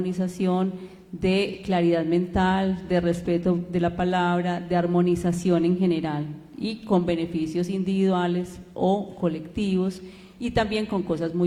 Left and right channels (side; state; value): both; identical; correlation 1.00